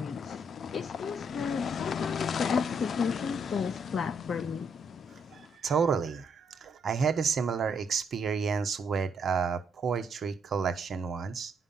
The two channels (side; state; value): both; normal; correlation 0.73